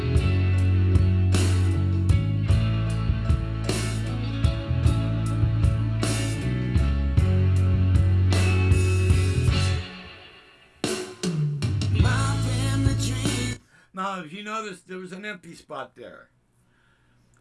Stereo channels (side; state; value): both; identical; correlation 1.00